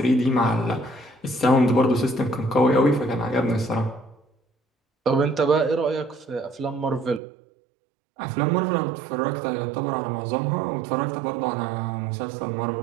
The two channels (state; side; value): drops out; left; at 7.2 s